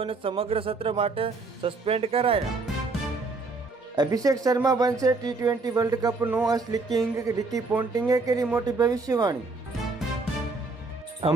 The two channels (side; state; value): left; quieter; 3.7 dB